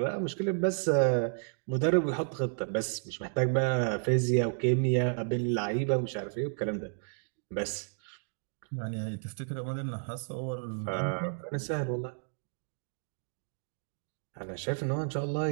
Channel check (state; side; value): silent; left; digital silence